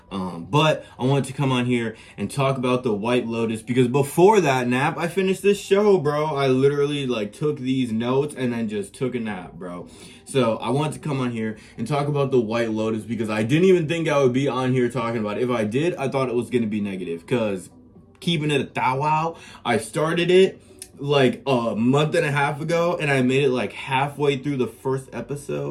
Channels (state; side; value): identical; both; correlation 1.00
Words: But I wanted to come on here and talk about the White Lotus because before that nap, I finished this show, bro. I literally took these notes and then just took a nap, bro. So I wanted to come on here and talk about the White Lotus because I didn't even think I would be on here talking about it. If I did, I thought it was going to be negative because keeping it a thou wow, I started it like a month and a half ago and I made it like halfway through the first